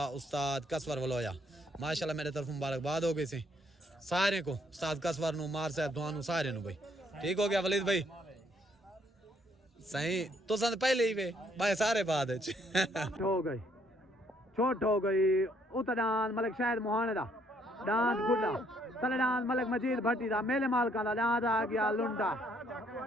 उस्ताद कसवर वलोया माशाल्लाह मेरे तरफ मुबारकबाद हो गई सी सारे को उस्ताद कसवर नु मार साहब दुआनु सारे नु भाई ठीक हो गया वलीद भाई सही तो संद पहले ही वे भाई सारे बाद हो गई छोट हो गई उतदान मलिक शायद मोहाने दा दांत गुड्डा तलदान मलिक मजीद भट्टी दा मेले माल का दांत आ गया लुंडा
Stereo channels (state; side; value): normal; both; correlation 0.68